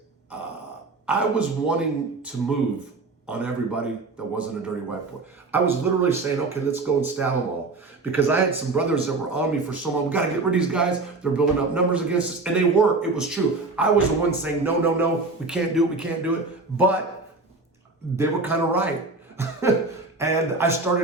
I was wanting to move on everybody that wasn't a dirty white boy. I was literally saying, okay, let's go and stab them all. Because I had some brothers that were on me for so long. We got to get rid of these guys. They're building up numbers against us. And they were. It was true. I was the one saying, no, we can't do it. But they were kind of right. And I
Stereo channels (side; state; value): left; quieter; 3.5 dB